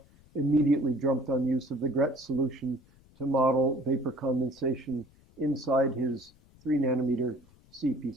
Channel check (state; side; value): noise; left; rumble, 28 dB below the sound